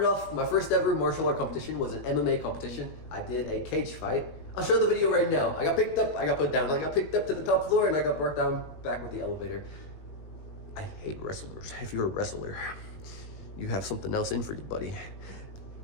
off, my first ever martial art competition was an MMA competition. I did a cage fight. I'll show the video right now. I got picked up, I got put down. I got picked up to the top floor, and I got brought down back with the elevator. I hate wrestlers. If you're a wrestler, you have something else in for you, buddy.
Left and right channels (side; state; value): right; late; 19 ms